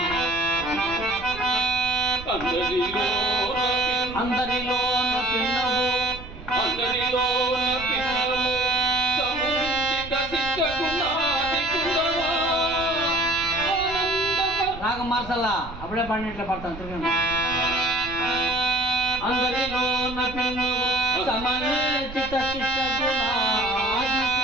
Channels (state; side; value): noise; right; rumble, 14 dB below the sound